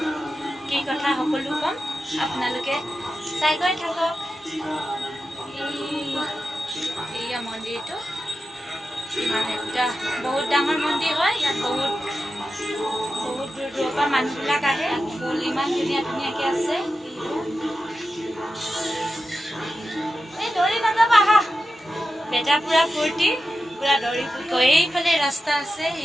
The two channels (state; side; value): normal; both; correlation 0.91